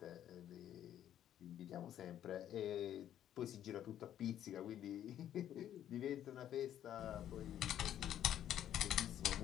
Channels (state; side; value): quieter; right; 10.9 dB